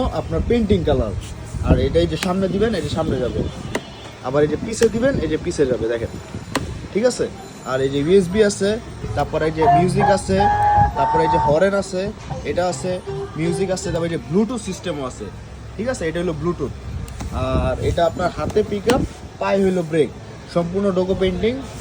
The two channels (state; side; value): identical; both; correlation 1.00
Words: আপনার পেন্টিং কালার। আর এটাই যে সামনে দিবেন, এই যে সামনে যাবে, আবার এই যে পিছে দিবেন, এই যে পিছে যাবে, দেখেন ঠিক আছে। আর এই যে ইউএসবি আছে, তারপরে এই যে মিউজিক আছে, তারপরে এই যে হরেন আছে, এটা আছে, মিউজিক আছে, তারপরে এই যে ব্লুটুথ সিস্টেমও আছে, ঠিক আছে। এটা হলো ব্লুটুথ। আর এটা আপনার হাতে পিক আপ, পায়ে হইলো ব্রেক, সম্পূর্ণ ডোকো পেন্টিং।